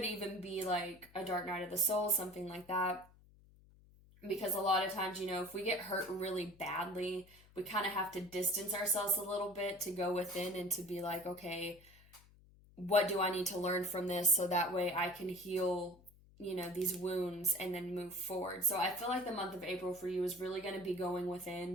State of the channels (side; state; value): left; noise; hum, 25 dB below the sound